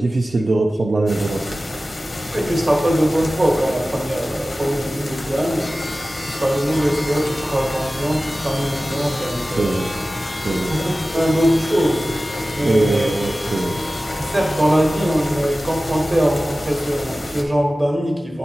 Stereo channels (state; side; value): normal; both; correlation 0.96